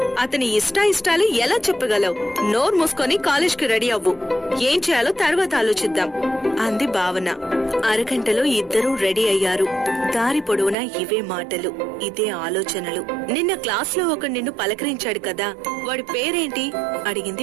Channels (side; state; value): left; drops out; at 10.8 s